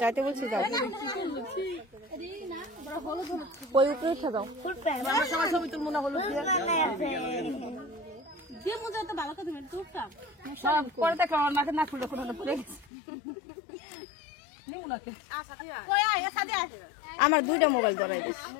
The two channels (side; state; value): right; drops out; at 12.9 s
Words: যাইতে বলছি যাও, ওই উপরে উঠে যাও। ছবি তুলবো না হলুদ দিয়ে। পরে দেখলাম আমার মাকে না ফুল পড়ে গেছে। আমার 2টা মোবাইল ধরাই দিস।